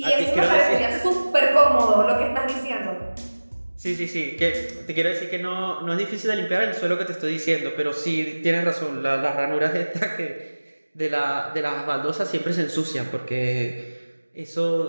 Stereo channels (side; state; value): both; inverted; correlation -1.00